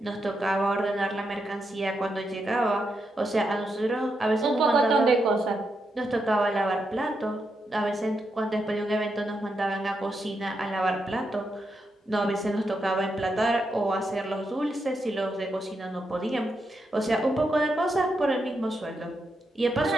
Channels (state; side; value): normal; both; correlation 0.83